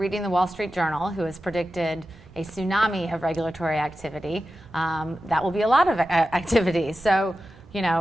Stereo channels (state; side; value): normal; both; correlation 0.93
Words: the Wall Street Journal, who has predicted a tsunami of regulatory activity, that will be a lot of activity. So,